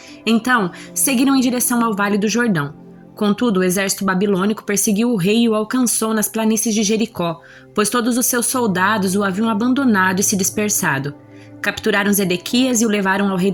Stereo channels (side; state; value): both; identical; correlation 1.00